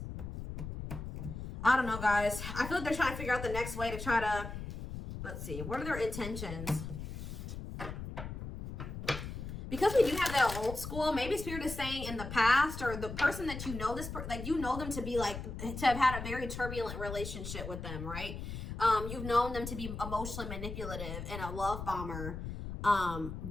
I don't know, guys. I feel like they're trying to figure out the next way to try to, let's see, what are their intentions? Because we do have that old school, maybe spirit is saying in the past, or the person that you know, like you know them to be like, to have had a very turbulent relationship with them, right? You've known them to be emotionally manipulative and a love bomber.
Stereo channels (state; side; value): noise; left; rumble, 7 dB below the sound